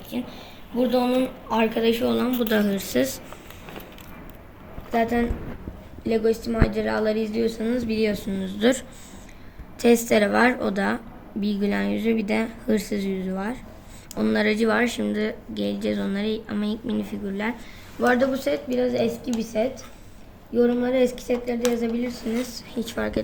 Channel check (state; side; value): identical; both; correlation 1.00